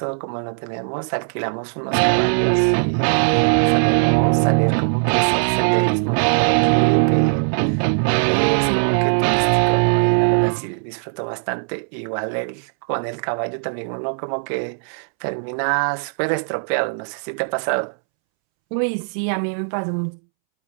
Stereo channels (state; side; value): silent; left; 66 dB below the other